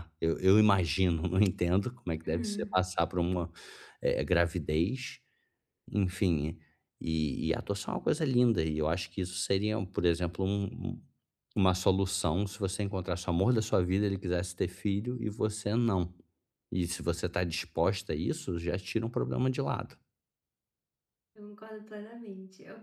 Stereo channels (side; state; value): both; identical; correlation 1.00